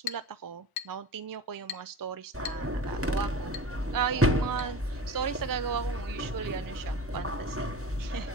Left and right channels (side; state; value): both; normal; correlation 0.34